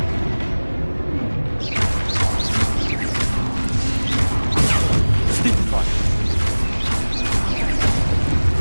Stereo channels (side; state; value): both; inverted; correlation -1.00